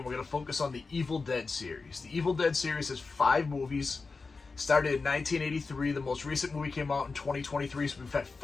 we're going to focus on the Evil Dead series. The Evil Dead series has 5 movies. Started in 1983. The most recent movie came out in 2023, so we've had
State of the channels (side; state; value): right; quieter; 4.2 dB